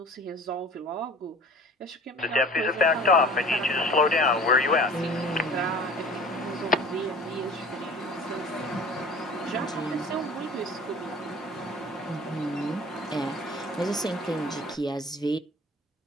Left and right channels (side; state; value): both; normal; correlation 0.43